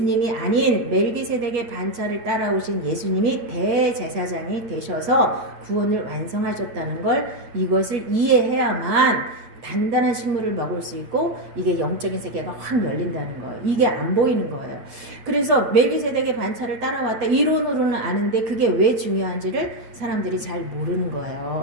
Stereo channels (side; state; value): left; late; 8.5 ms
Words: 아닌 멜기세덱의 반차를 따라오신 예수님이 대제사장이 되셔서 구원을 완성하셨다는 걸 이것을 이해해야만 단단한 식물을 먹을 수 있고 이게 영적인 세계가 확 열린다는 거예요. 이게 안 보이는 거예요. 그래서 멜기세덱의 반차를 따라왔다 이론으로는 아는데 그게 왜 중요한지를 사람들이 잘 모르는